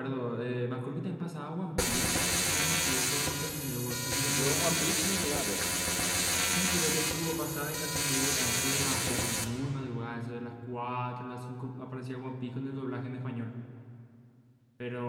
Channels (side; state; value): both; identical; correlation 1.00